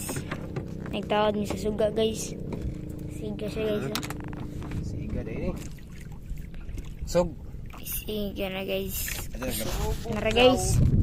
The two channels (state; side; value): identical; both; correlation 1.00